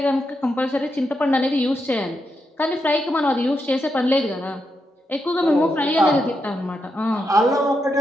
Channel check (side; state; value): both; normal; correlation 0.84